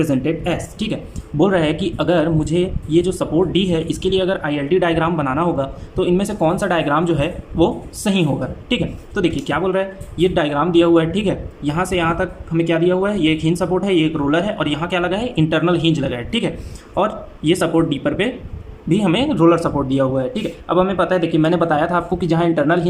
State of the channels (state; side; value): identical; both; correlation 1.00